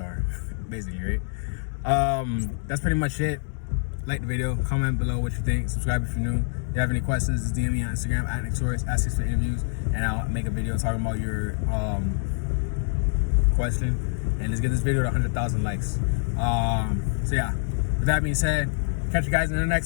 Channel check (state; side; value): silent; right; 61 dB below the other